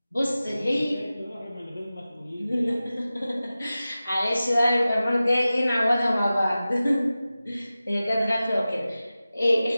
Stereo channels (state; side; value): inverted; both; correlation -0.96